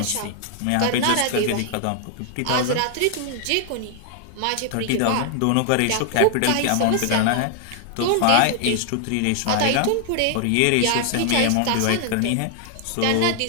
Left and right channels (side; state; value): both; different; correlation 0.00